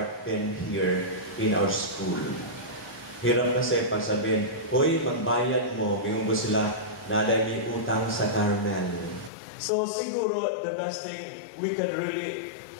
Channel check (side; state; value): right; drops out; at 9.3 s